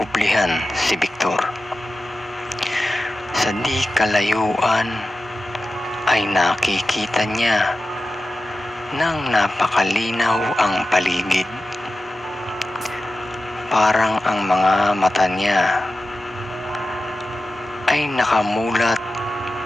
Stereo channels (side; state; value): both; normal; correlation 0.93